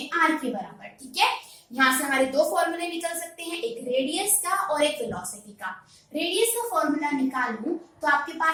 r के बराबर। ठीक है, यहाँ से हमारे दो फॉर्मूले निकल सकते हैं, एक रेडियस का और एक वेलोसिटी का। रेडियस का फॉर्मूला निकालूं तो आपके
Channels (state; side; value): identical; both; correlation 1.00